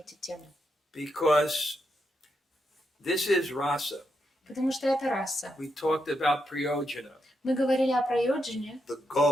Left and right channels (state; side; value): normal; both; correlation 0.83